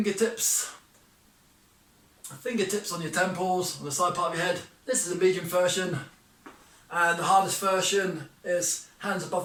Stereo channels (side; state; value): both; identical; correlation 1.00